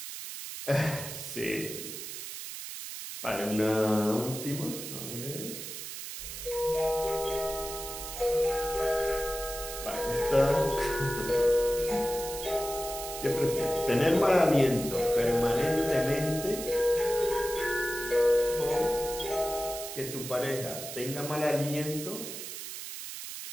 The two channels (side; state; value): right; noise; hiss, 8 dB below the sound